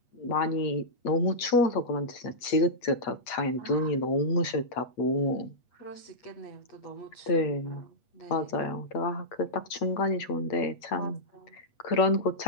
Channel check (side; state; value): right; late; 8.4 ms